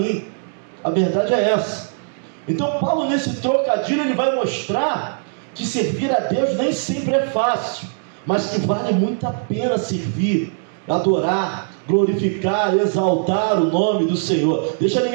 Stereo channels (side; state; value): left; silent; digital silence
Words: A verdade é essa. Então Paulo, nesse trocadilho, ele vai mostrar que servir a Deus nem sempre é fácil, mas que vale muito a pena servir, adorar, glorificar, exaltar o nome do Senhor. Deixa